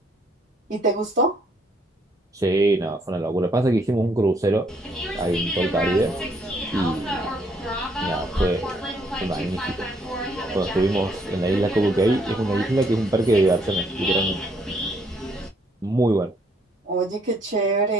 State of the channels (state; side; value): normal; both; correlation 0.68